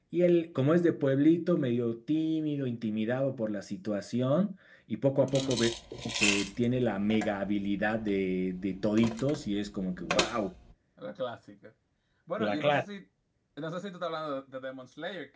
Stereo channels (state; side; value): identical; both; correlation 1.00